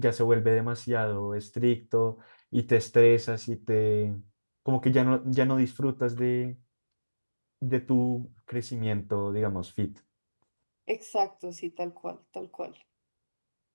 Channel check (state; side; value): inverted; both; correlation -1.00